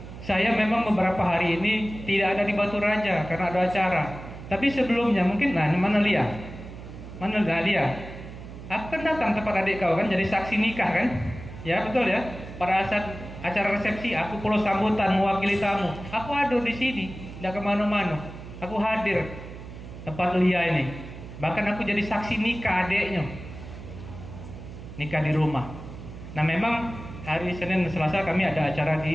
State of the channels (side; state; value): right; noise; hum, 13 dB below the sound